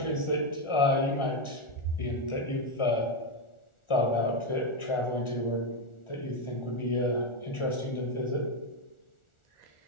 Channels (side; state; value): right; late; 1.4 ms